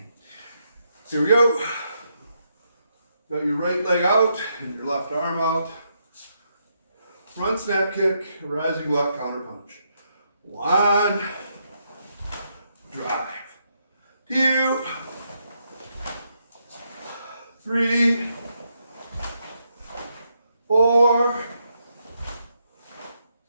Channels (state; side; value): inverted; both; correlation -0.79